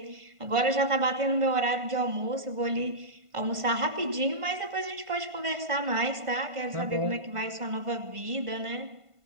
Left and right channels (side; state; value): left; late; 1.5 ms